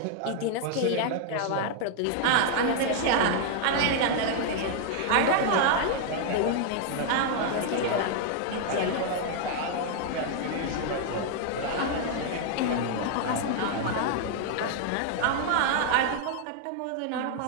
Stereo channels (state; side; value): different; both; correlation 0.00